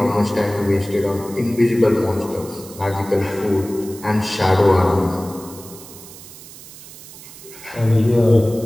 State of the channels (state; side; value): noise; right; hiss, 17 dB below the sound